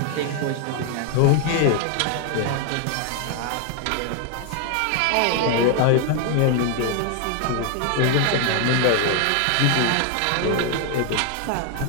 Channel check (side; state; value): both; different; correlation 0.00